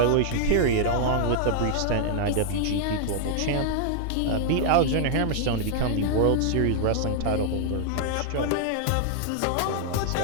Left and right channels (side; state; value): both; different; correlation -0.01